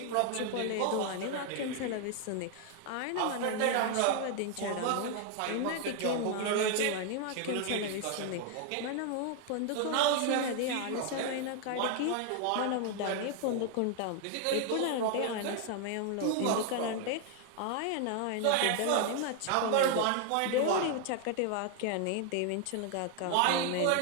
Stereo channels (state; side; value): different; both; correlation 0.00